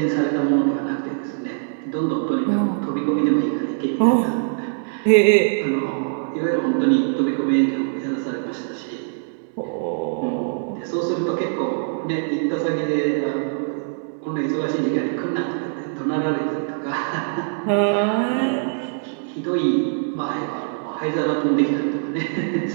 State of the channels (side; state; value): left; silent; digital silence